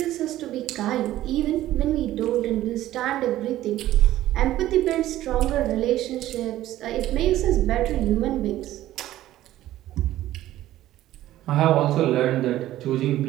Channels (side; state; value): left; quieter; 14.3 dB